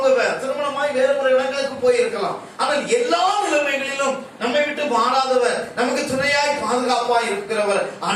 திருமணமாய் வேற ஒரு இடங்களுக்கு போயிருக்கலாம். ஆனால் எல்லா நிலைமைகளிலும் நம்மை விட்டு மாறாதவர், நமக்கு துணையாய் பாதுகாப்பாய் இருக்கிறவர்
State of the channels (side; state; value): both; identical; correlation 1.00